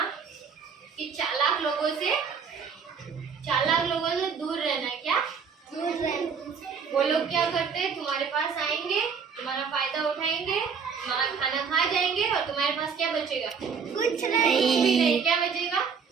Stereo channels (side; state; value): left; quieter; 6.1 dB